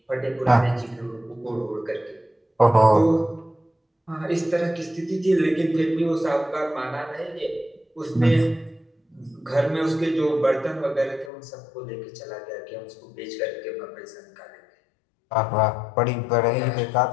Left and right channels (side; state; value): right; drops out; at 11.3 s